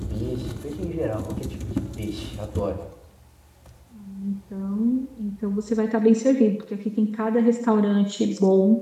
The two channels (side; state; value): both; identical; correlation 1.00